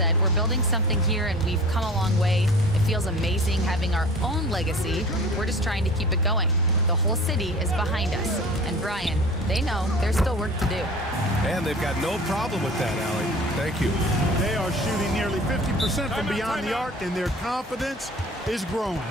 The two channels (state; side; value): normal; both; correlation 0.42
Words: "We're building something here and we've come a long way. It feels amazing having our own legacy. We're just trying to keep it going. The whole city is behind us." And Brian, they know there's still work to do. And they've got no problem with that, Allie. Thank you. They are shooting nearly 50% from beyond the arc, and their confidence is growing.